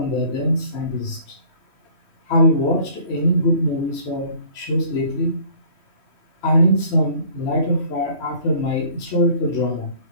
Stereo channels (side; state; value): right; late; 3.1 ms